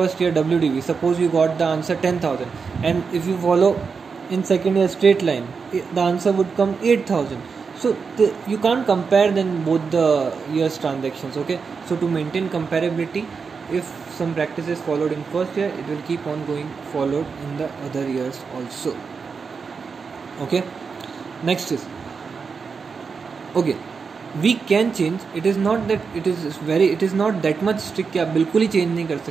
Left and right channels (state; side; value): quieter; left; 5.4 dB